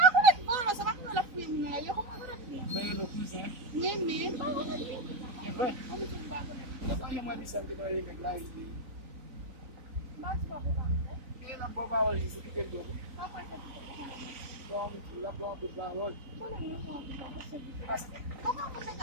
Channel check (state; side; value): late; left; 3.9 ms